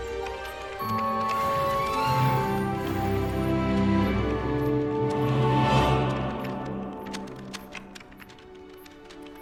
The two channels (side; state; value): both; identical; correlation 1.00